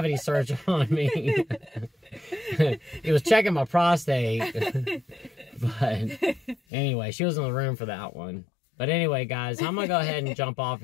search on me. He was checking my prostate. But anyway, she was in the room for that one. But anyway, guys, I'm going to go ahead and jump off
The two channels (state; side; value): drops out; right; at 6.6 s